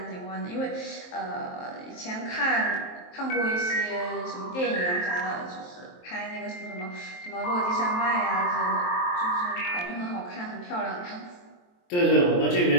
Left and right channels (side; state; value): right; late; 23 ms